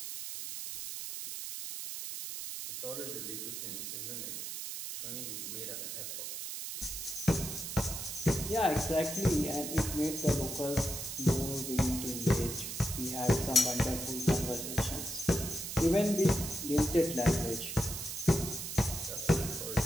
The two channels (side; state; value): right; noise; hiss, 6 dB below the sound